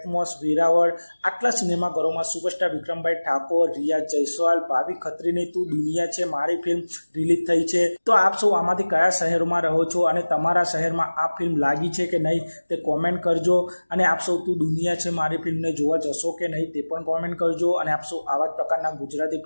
Veraval આટલા સિનેમાઘરોમાં superstar વિક્રમભાઈ ઠાકોર, રિયા જયસ્વાલ, ભાવિ ખત્રીની તું દુનિયા છે મારી film release થઈ છે। તો આપ સૌ આમાંથી કયા શહેરોમાં રહો છો અને તમારા શહેરમાં આ ફિલ્મ લાગી છે કે નહીં તે કોમેન્ટ કરજો, અને આપ સૌ તું દુનિયા છે મારી ફિલ્મને જોવા જશો કે નહીં તે પણ કોમેન્ટ કરજો। અને આપ સૌ આવા જ પ્રકારના ગુજરાતી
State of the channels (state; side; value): inverted; both; correlation -1.00